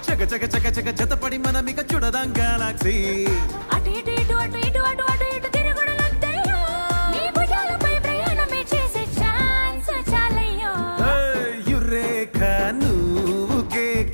చక చక చక చక జతపడి మనమిక చూడదాం గెలాక్సీ అటు ఇటు ఇటు అటు ఇటు అటు అటు ఇటు తిరుగుడులొద్దయ్యో నీ భుజాలపై ప్రయాణమే చేసే ఛాన్స్ చాలయ్యో యురేఖ నువ్వు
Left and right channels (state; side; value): inverted; both; correlation -1.00